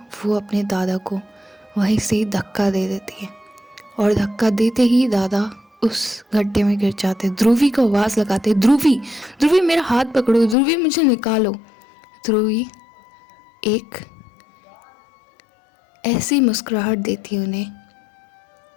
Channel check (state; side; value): drops out; right; at 10.6 s